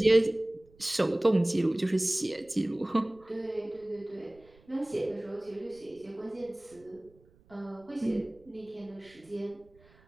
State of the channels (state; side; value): noise; right; rumble, 28 dB below the sound